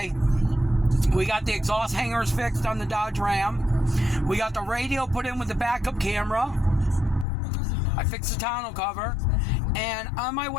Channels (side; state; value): right; drops out; at 7.2 s